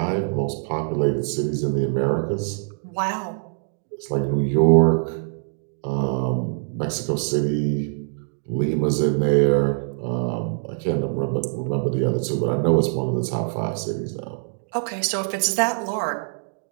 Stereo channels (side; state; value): left; silent; digital silence